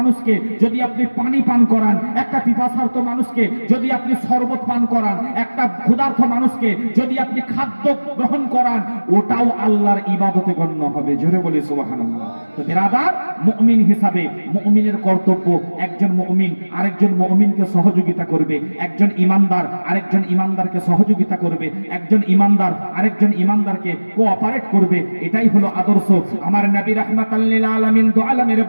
যদি আপনি পানি পান করান, একটা পিপাসার্ত মানুষকে যদি আপনি শরবত পান করান, একটা ক্ষুধার্ত মানুষকে যদি আপনি খাদ্য গ্রহণ করান, ওটাও আল্লাহর ইবাদতে গণ্য হবে। জোরে বলি সুবহানাল্লাহ। তো বিরাদার, মুমিন হিসাবে মুমিনের কর্তব্য একজন মুমিন আরেকজন মুমিনকে সহযোগিতা করবে, একজন ইমানদার আরেকজন ইমানদারকে সহযোগিতা করবে, একজন ইমানদার আরেকজন ইমানদারকে কোঅপারেট করবে। এটাই হলো আদর্শ। আমার নবী রাহমাতাল লিল আলামিন, দু আলমের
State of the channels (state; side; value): inverted; both; correlation -1.00